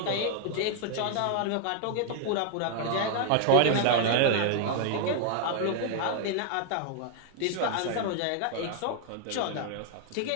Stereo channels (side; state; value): both; different; correlation 0.00